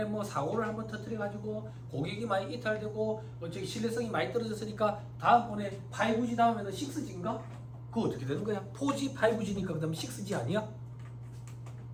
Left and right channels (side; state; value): both; identical; correlation 1.00